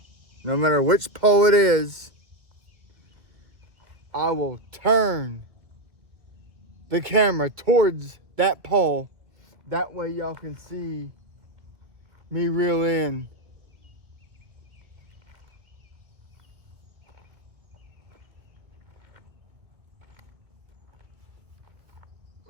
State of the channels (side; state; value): left; late; 2.0 ms